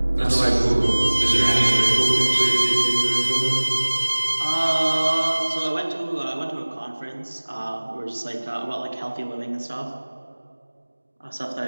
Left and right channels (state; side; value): inverted; both; correlation -1.00